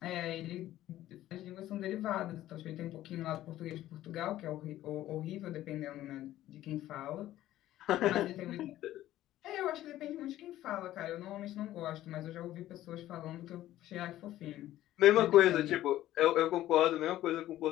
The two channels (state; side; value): quieter; right; 14.1 dB